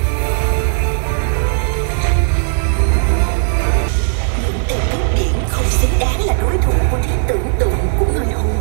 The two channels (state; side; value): silent; left; digital silence